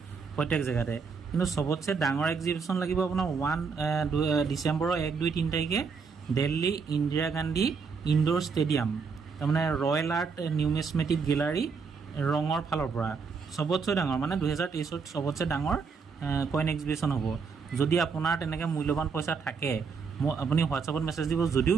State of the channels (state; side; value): quieter; left; 5.4 dB